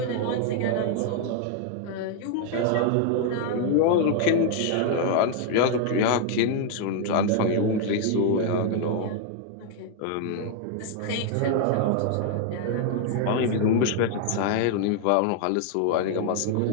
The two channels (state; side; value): different; both; correlation 0.00